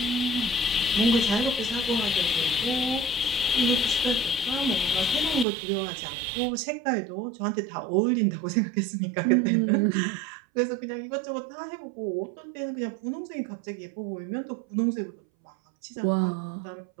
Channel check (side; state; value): left; drops out; at 5.5 s